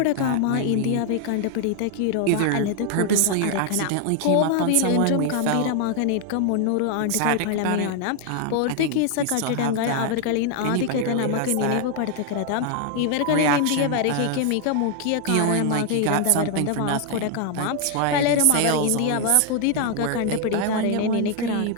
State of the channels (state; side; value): different; both; correlation 0.00